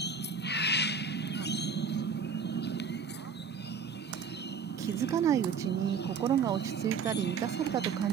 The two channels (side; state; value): left; quieter; 5.8 dB